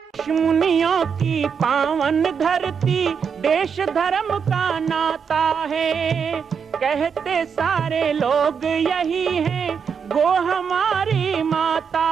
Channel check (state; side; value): quieter; left; 6.6 dB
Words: ऋषि मुनियों की पावन धरती, देश धर्म का नाता है। कहते सारे लोग यही हैं, गो हमारी माता